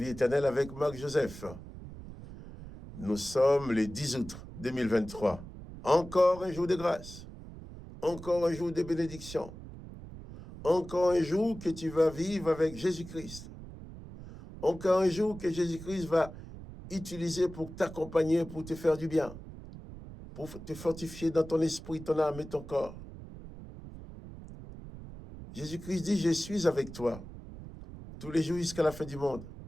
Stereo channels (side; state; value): right; noise; rumble, 14 dB below the sound